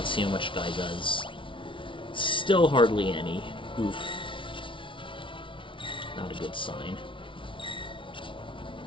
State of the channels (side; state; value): right; late; 0.25 ms